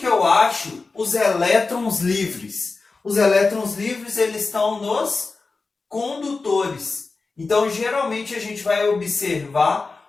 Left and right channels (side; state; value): right; quieter; 4.0 dB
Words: eu acho os elétrons livres? Os elétrons livres eles estão nos condutores. Então, geralmente, a gente vai